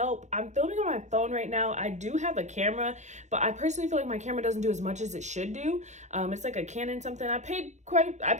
I'm filming on my phone right now. I do have a camera, but I personally feel like my camera doesn't do as much as it should do. It's like a Canon something. I paid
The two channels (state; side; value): late; left; 0.34 ms